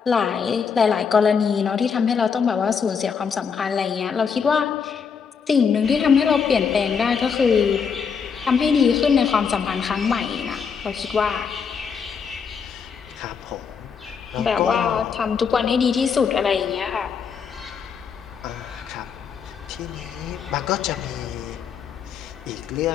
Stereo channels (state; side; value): quieter; right; 6.3 dB